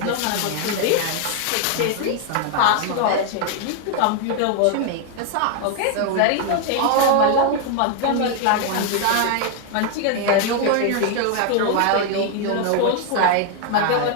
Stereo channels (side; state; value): both; different; correlation 0.00